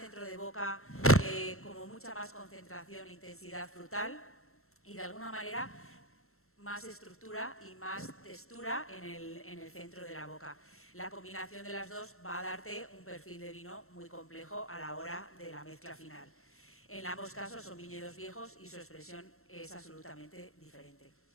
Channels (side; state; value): right; late; 0.62 ms